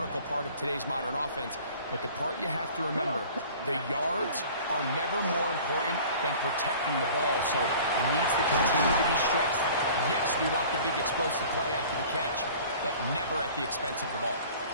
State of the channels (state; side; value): inverted; both; correlation -0.46